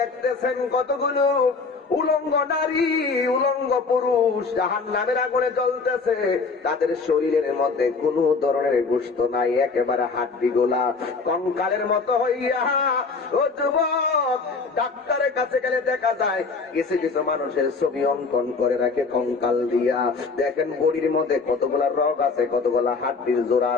কতগুলো উলঙ্গ নারী উলঙ্গ পুরুষ জাহান্নামের আগুনে জ্বলতেছে, তাদের শরীরের মধ্যে কোনো ধরনের গোশত নাই, একেবারে হাড্ডি গোলা কঙ্কালের মতো হইয়া। ও যুবক, ডাক্তারের কাছে গেলে দেখা যায় কিছু কিছু মানুষের ছবি অঙ্কন করে রাখে কঙ্কাল দিয়া। দেখেন বডির মধ্যে কতগুলা রগ আছে, কতগুলা হাড্ডির জোড়া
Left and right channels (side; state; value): right; quieter; 4.5 dB